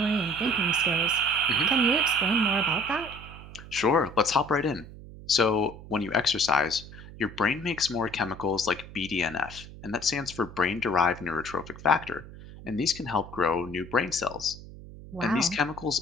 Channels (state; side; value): noise; right; hum, 16 dB below the sound